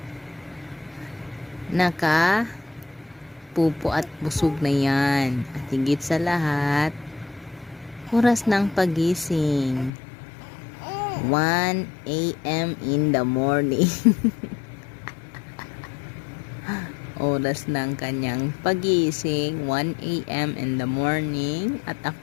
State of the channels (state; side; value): drops out; right; at 9.9 s